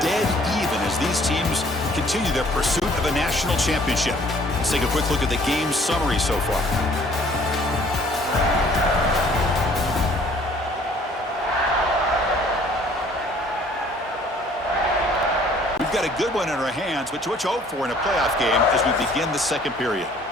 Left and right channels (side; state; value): both; normal; correlation 0.57